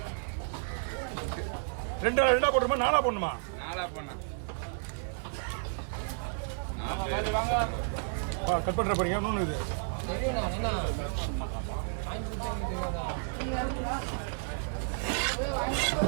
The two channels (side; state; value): left; silent; digital silence